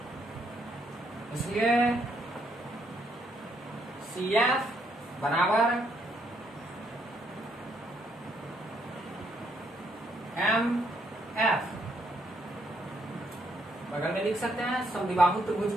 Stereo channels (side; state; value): both; normal; correlation 0.73